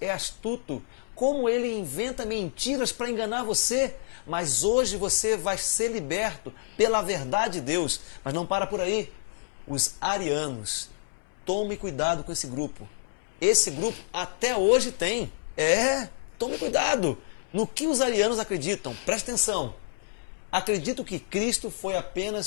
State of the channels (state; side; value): silent; right; 59 dB below the other